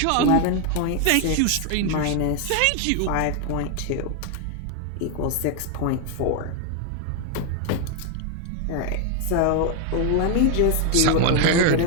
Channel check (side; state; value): both; different; correlation 0.01